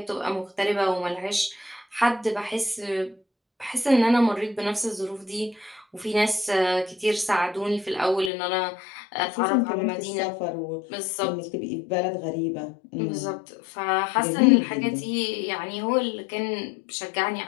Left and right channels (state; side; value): drops out; right; at 8.3 s